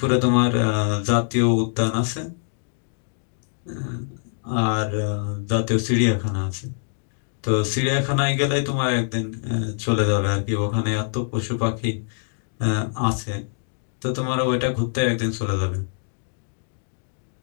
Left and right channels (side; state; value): right; silent; digital silence